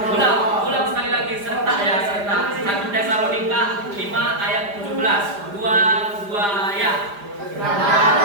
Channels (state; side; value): late; left; 5.0 ms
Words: Ulang sekali lagi, serentak ya, serentak. 1 Tesalonika 5 ayat 17. Dua ya.